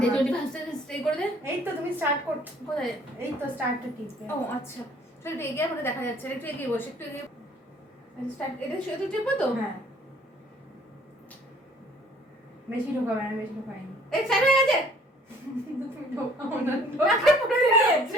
25 সেকেন্ড স্টে করে দে। এই তো তুমি স্টার্ট কর। কোথায়? এই তো স্টার্টটা টিপবে। ও আচ্ছা চল একটু এগিয়ে আমাকে দেখা যাচ্ছে না, একটু এগিয়ে বসে, একটু এগিয়ে স্টার্ট। এটা শুধু টিপবো তো? হ্যাঁ বেশি ঢোকাবে না, বেশি ঢোকায়নি। এই স্টার্ট হয়ে গেছে। কিন্তু তুমি ঢোকাও না, নাকে পড়ে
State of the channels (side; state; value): both; normal; correlation 0.57